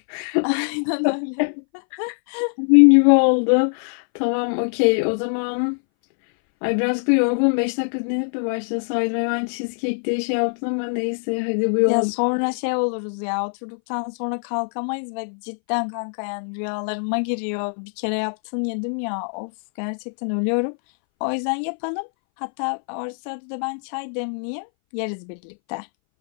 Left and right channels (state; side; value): silent; right; 61 dB below the other